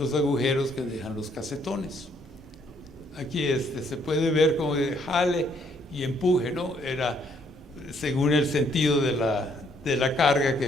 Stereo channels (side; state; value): both; normal; correlation 0.68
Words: agujeros que dejan los casetones. Aquí se puede ver como de jale y empuje, ¿no? Era según el sentido de la carga